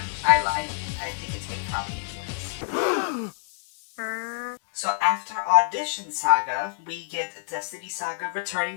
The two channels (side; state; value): right; silent; 60 dB below the other